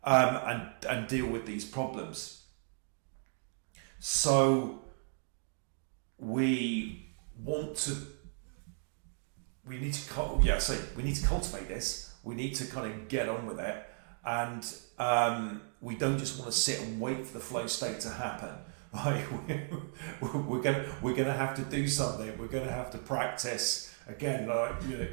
and deal with these problems. So we need to cultivate this. We need to kind of get on with it. And we don't just want to sit and wait for the flow state to happen. Right? We're gonna have to do something. We're gonna have to practice again.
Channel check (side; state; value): left; silent; 54 dB below the other